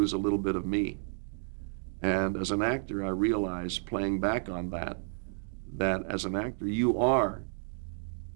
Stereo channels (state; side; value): silent; left; digital silence